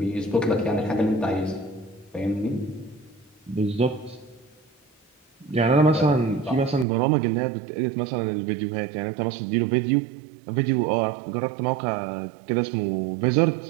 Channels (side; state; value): left; drops out; at 6.9 s